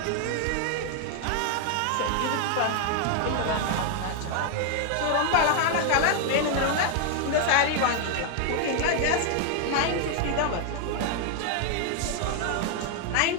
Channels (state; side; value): different; both; correlation 0.00